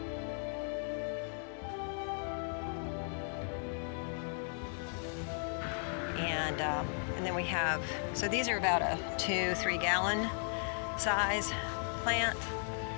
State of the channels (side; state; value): right; silent; 54 dB below the other